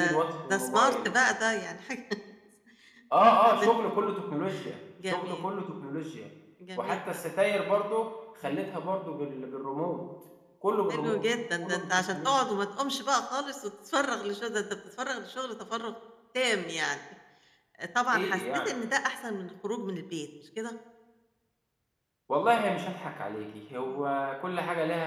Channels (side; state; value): both; identical; correlation 1.00